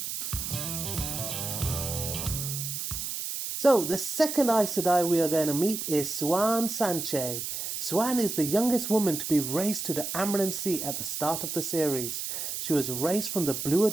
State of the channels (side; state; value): right; noise; hiss, 4 dB below the sound